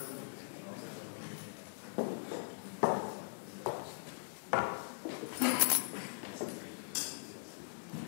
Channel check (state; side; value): silent; right; digital silence